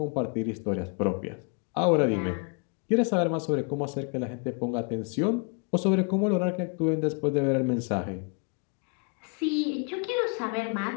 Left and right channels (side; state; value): right; quieter; 36.7 dB